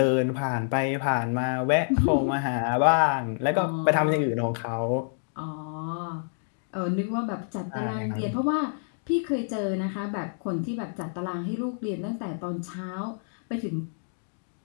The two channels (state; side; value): silent; right; digital silence